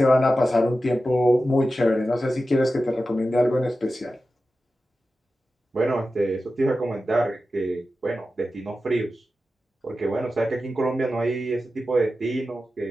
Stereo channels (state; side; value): normal; both; correlation 0.93